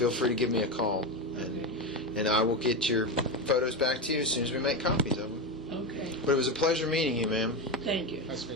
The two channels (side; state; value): both; normal; correlation 0.15